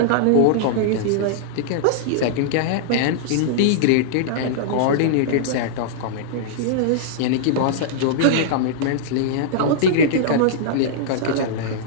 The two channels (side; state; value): both; different; correlation -0.02